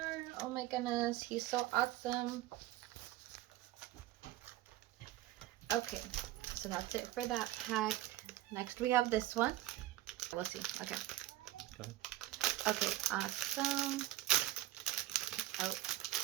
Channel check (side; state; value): left; quieter; 16.0 dB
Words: Oh my goodness, he's so awesome. Okay, so that's it for that pack. Next we have this one. We'll see. Okay. Go ahead. Okay, awesome. Oh.